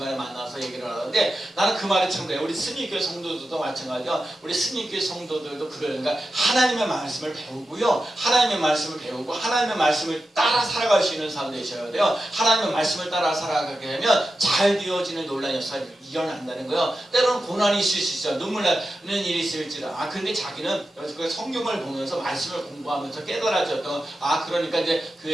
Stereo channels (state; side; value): normal; both; correlation 0.91